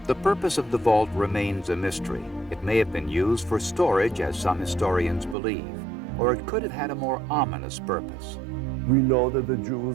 The purpose of the vault remains a mystery. It may have been used for storage, as some historians believe, or it could have had a more ominous purpose. We know that the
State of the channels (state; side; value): drops out; left; at 5.4 s